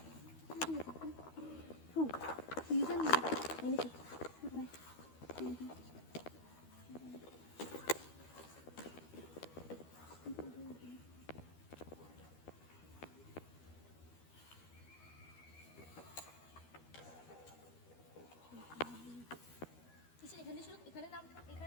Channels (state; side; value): late; right; 12 ms